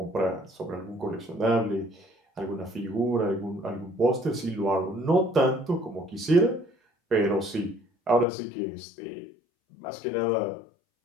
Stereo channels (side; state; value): right; drops out; at 8.2 s